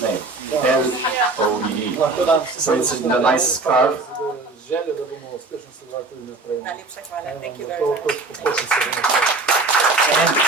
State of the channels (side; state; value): left; quieter; 3.5 dB